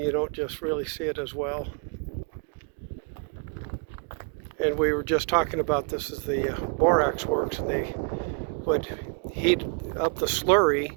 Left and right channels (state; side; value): quieter; left; 39.5 dB